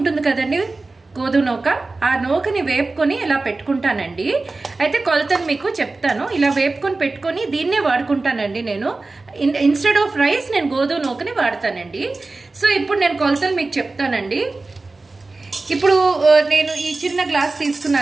కదండి, గోధుమ నూక, ఆ నూకని వేపుకొని ఇలా పెట్టుకుంటానండి. అయితే కొలతను మీకు చెప్తాను. ఇలా వేపుకొని పెట్టుకొని దీన్నే వాడుకుంటానండి నేను. ఇన్స్టెడ్ ఆఫ్ రైస్ నేను గోధుమ నూకని వాడతానండి. సో ఇప్పుడు నేను కొలతలు మీకు చెప్తానండి. ఇప్పుడు నేను ఈ చిన్న గ్లాస్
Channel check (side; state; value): left; quieter; 3.4 dB